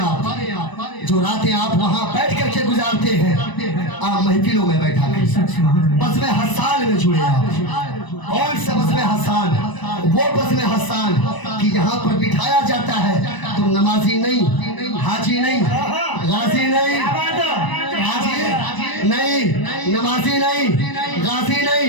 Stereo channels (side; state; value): right; late; 1.0 ms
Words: जो रातें आप वहाँ बैठ करके गुजारते हैं, आप महफिलों में बैठा कर बज़्म हस्सान में जुड़े। आप कौन सा बज़्म हस्सान? वो बज़्म हस्सान कि यहाँ पर बिठाया जाता है, तुम नमाजी नहीं, हाजी नहीं, गाजी नहीं, हाजी नहीं, नमाजी नहीं, गाजी